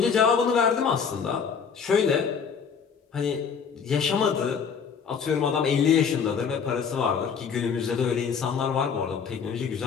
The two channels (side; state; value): right; quieter; 6.4 dB